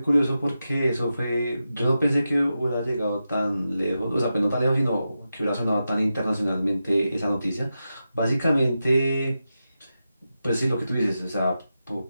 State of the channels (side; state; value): both; inverted; correlation -0.90